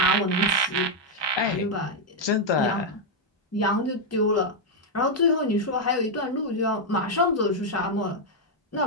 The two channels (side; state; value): both; normal; correlation -0.01